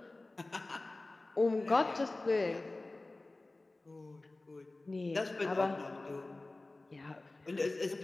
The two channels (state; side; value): quieter; right; 3.0 dB